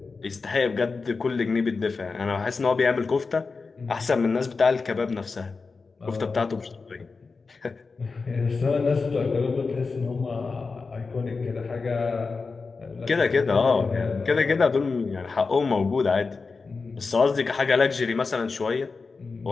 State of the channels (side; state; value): right; quieter; 4.4 dB